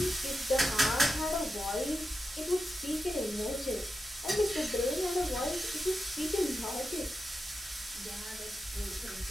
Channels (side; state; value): both; normal; correlation 0.89